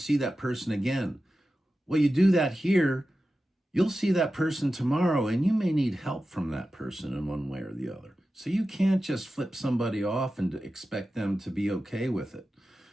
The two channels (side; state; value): both; normal; correlation 0.93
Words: that person again. Well, you do that here, you'll see that person tomorrow and you may need help from that person in one way or the other. So you can't just flip somebody off and expect them to be okay with it.